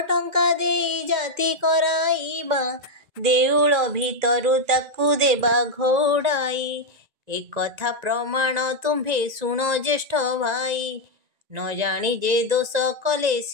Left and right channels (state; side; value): late; left; 1.9 ms